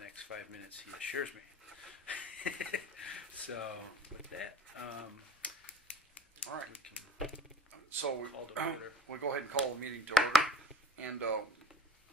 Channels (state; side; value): normal; both; correlation 0.45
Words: next 5 minutes, he assures me. So, with that, All right. we can So call to order. we'll go ahead and call the meeting to order. And